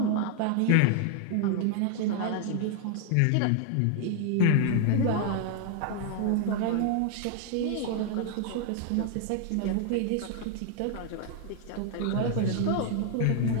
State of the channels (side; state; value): both; different; correlation 0.00